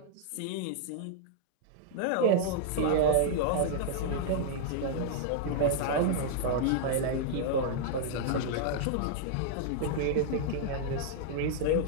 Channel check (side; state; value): both; different; correlation -0.01